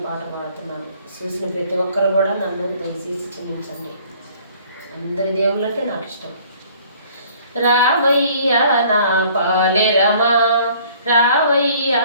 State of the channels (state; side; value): inverted; both; correlation -0.56